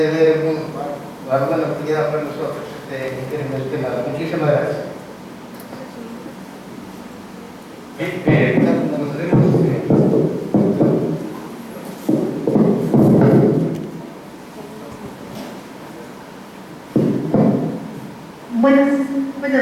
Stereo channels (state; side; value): identical; both; correlation 1.00